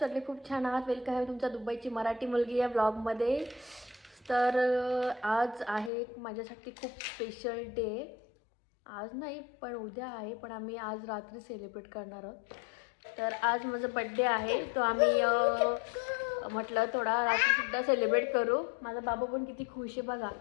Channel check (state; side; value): drops out; right; at 5.9 s